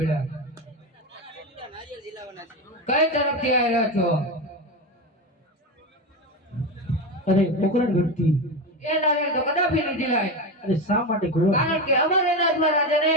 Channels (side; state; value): both; normal; correlation 0.18